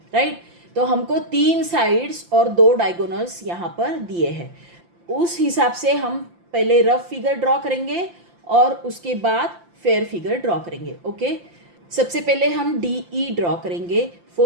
राइट। तो हमको 3 साइड्स और 2 डायगोनल्स यहाँ पर दिए हैं। उस हिसाब से हम पहले रफ फिगर ड्रॉ करेंगे और उसके बाद फेयर फिगर ड्रॉ करेंगे। ओके, सबसे पहले हम DE ड्रॉ करेंगे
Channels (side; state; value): left; late; 5.8 ms